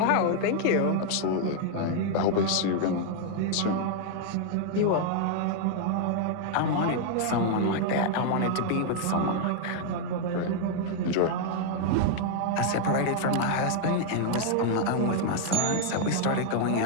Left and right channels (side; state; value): both; different; correlation 0.00